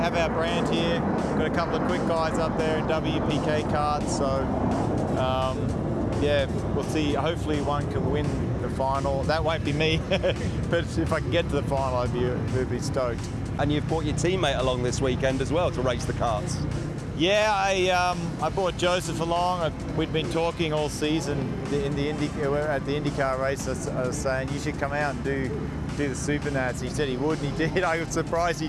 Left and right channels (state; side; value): identical; both; correlation 1.00